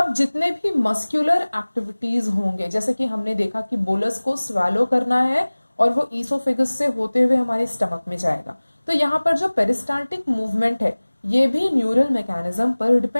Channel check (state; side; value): inverted; both; correlation -1.00